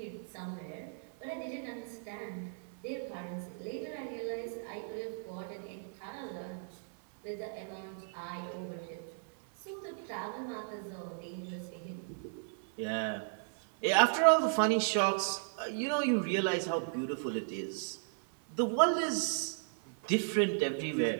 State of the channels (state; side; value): silent; left; 54 dB below the other